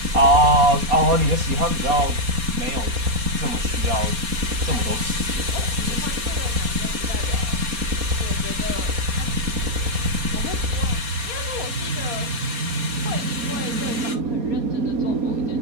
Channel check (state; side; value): late; left; 4.2 ms